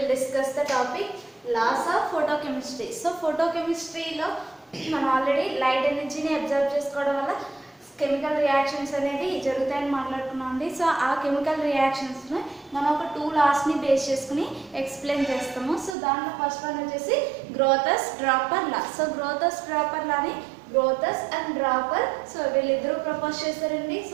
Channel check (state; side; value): drops out; left; at 16.0 s